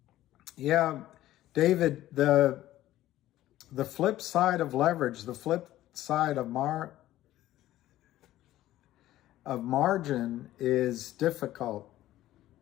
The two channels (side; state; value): right; quieter; 14.5 dB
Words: Yeah, David, the flip side of leverage, the flip side of margin is difficult